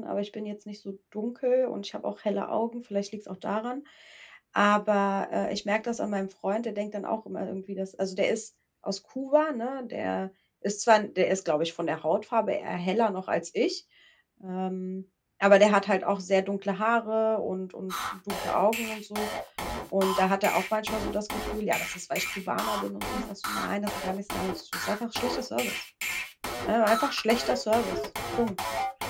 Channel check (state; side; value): identical; both; correlation 1.00